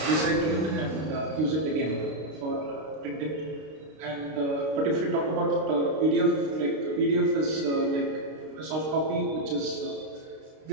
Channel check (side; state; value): left; late; 32 ms